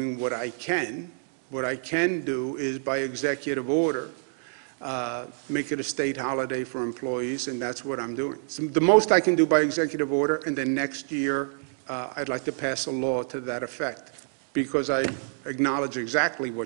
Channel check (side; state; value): left; silent; digital silence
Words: what I can. What I can do is by executive order, make it a state holiday for employees, and that's what I'm doing. So the most I can do by executive order, and then next year I'd like to pass a law to that effect, because I acknowledge exactly